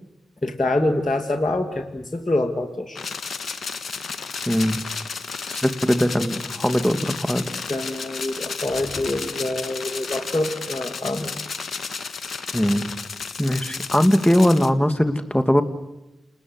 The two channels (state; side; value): normal; both; correlation 0.95